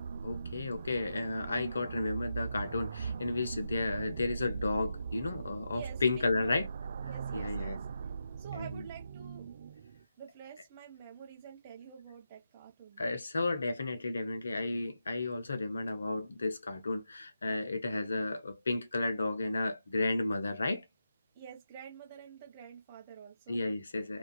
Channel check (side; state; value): both; inverted; correlation -0.88